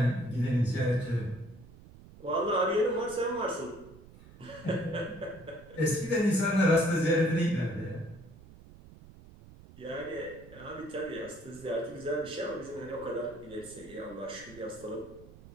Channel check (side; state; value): right; noise; rumble, 20 dB below the sound